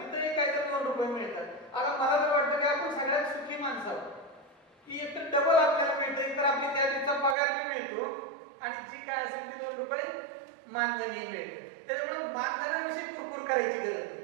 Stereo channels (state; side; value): drops out; left; at 7.4 s